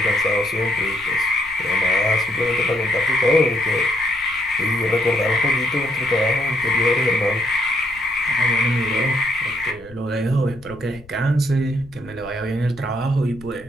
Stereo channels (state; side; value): noise; left; rumble, 22 dB below the sound